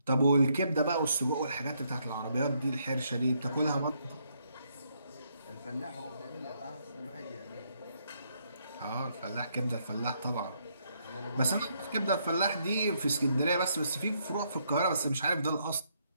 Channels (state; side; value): inverted; both; correlation -0.74